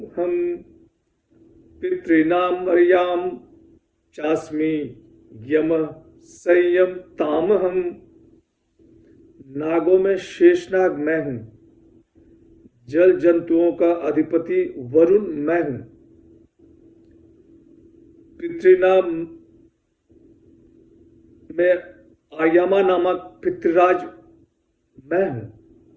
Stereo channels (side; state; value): both; identical; correlation 1.00